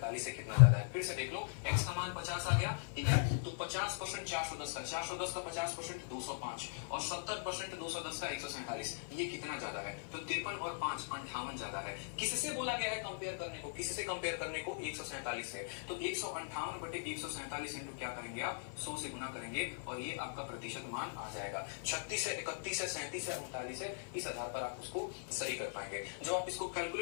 से कितना ज्यादा है। फिर से देख लो, x का मान 50 आ गया, ठीक है। तो 50% 410 का 50% 205 और 70% 210 का 147, ये कितना ज्यादा है, तो 53 और 5 58 ज्यादा है। किससे बोला गया है कंपेयर करने को, किससे कंपेयर करने को, 147 से। तो 158 बटे 147 इंटू क्या करेंगे आप, 100 से गुना करेंगे और ये आपका प्रतिशत मान आ जाएगा। 36 से 31 से 37 से 39 है, इस आधार पर आप उसको सही कर पाएंगे। जब आप इसको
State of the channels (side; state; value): right; silent; 51 dB below the other